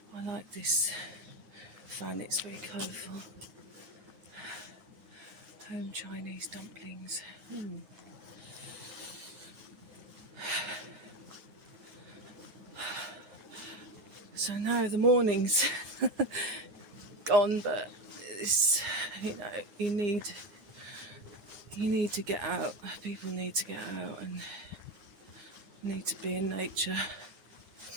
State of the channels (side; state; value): left; late; 9.7 ms